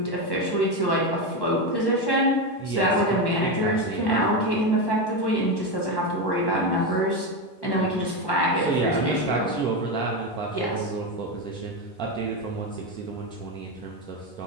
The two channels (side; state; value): right; late; 1.1 ms